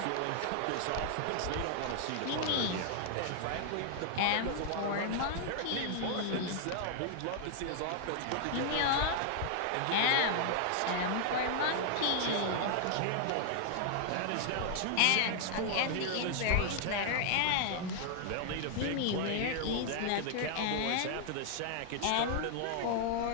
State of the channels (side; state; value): both; different; correlation 0.00